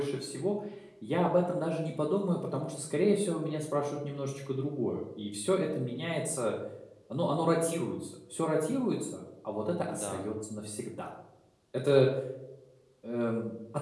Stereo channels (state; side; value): identical; both; correlation 1.00